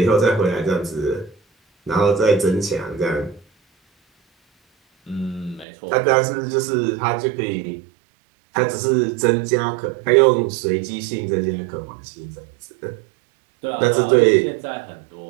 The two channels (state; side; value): drops out; left; at 5.7 s